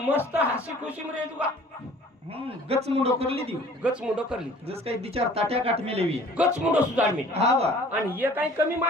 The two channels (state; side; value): normal; both; correlation 0.50